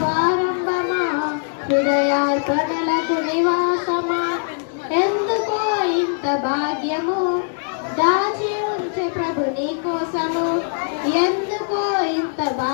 ఆరంభమా హృదయార్పణలకు నివాసమా, ఎందుకో ఇంత భాగ్యము దాచి ఉంచే ప్రభు నీ కోసము, ఎందుకో ఇంత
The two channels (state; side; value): silent; right; 63 dB below the other